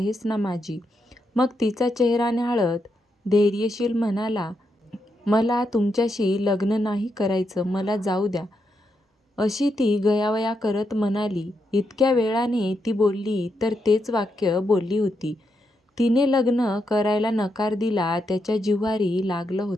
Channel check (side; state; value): both; normal; correlation 0.82